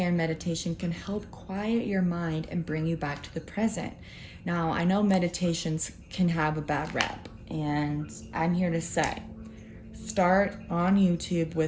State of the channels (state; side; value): identical; both; correlation 1.00